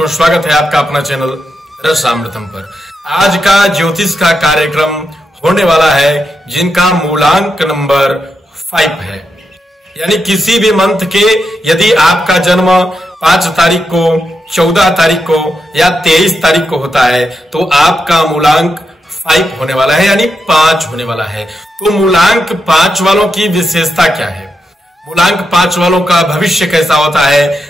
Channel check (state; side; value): normal; both; correlation 0.85